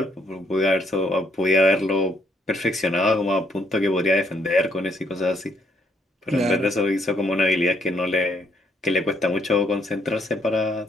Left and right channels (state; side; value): normal; both; correlation 0.71